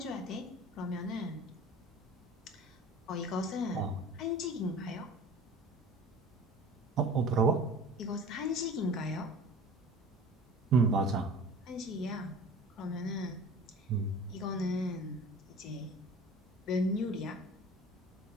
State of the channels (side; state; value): both; normal; correlation 0.41